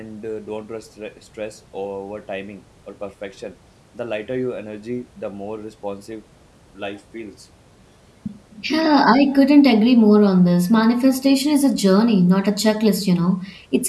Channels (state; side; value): identical; both; correlation 1.00